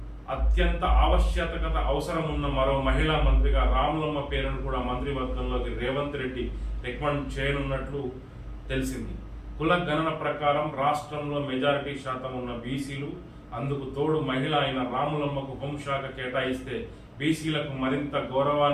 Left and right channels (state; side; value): identical; both; correlation 1.00